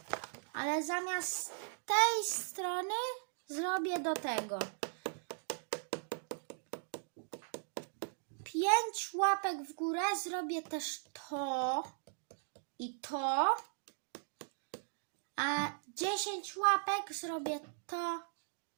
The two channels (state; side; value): silent; left; digital silence